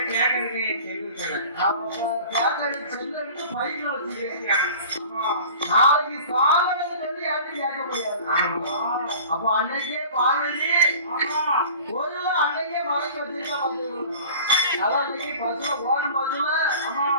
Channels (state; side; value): inverted; both; correlation -0.43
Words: செல்லு பையில வச்சுக்க. நாளைக்கு சாதனை சொல்லி யாரும் கேட்க முடியாது. அப்ப அன்னைக்கே பார்வதி ஒரு அன்னைக்கே மறைச்சு வச்சிருக்க. அதான் இன்னைக்கு பஸ்ல ஓடும் பஸ்ல